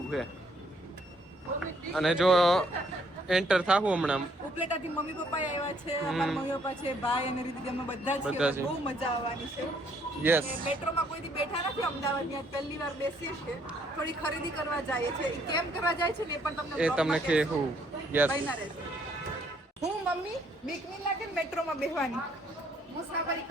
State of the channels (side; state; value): both; normal; correlation 0.67